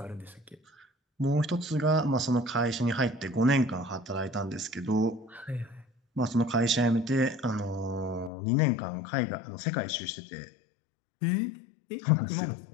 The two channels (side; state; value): right; drops out; at 8.3 s